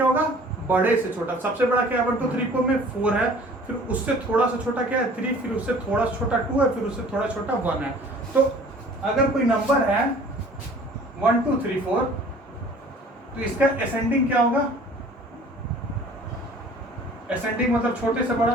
होगा, बड़े से छोटा। सबसे बड़ा क्या है 1 2 3 4 में 4 है, फिर उससे थोड़ा सा छोटा क्या है 3, फिर उससे थोड़ा सा छोटा 2 है, फिर उससे थोड़ा छोटा 1 है। तो अगर कोई नंबर है 1 2 3 4, तो इसका असेंडिंग क्या होगा, असेंडिंग मतलब छोटे से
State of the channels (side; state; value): both; normal; correlation 0.50